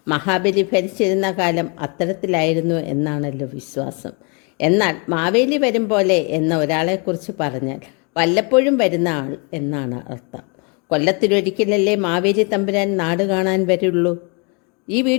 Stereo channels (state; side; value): quieter; right; 34.4 dB